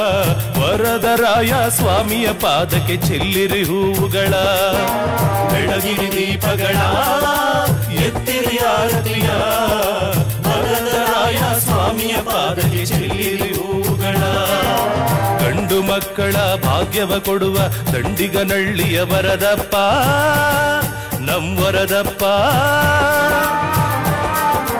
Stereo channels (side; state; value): left; noise; hum, 29 dB below the sound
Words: ವರದರಾಯ ಸ್ವಾಮಿಯ ಪಾದಕ್ಕೆ ಚೆಲ್ಲಿರಿ ಹೂವುಗಳ. ಬೆಳಗಿರಿ ದೀಪಗಳ ಎತ್ತಿರಿ ಆರತಿಯ, ವರದರಾಯ ಸ್ವಾಮಿಯ ಪಾದಕ್ಕೆ ಚೆಲ್ಲಿರಿ ಹೂವುಗಳ. ಗಂಡು ಮಕ್ಕಳ ಭಾಗ್ಯವ ಕೊಡುವ ದಂಡಿಗನಳ್ಳಿಯ ವರದಪ್ಪ, ನಮ್ಮೊರದಪ್ಪ.